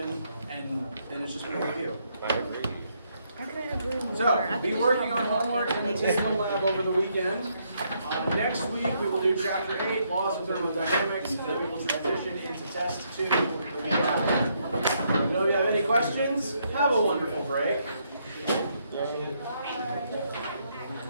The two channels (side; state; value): both; inverted; correlation -0.74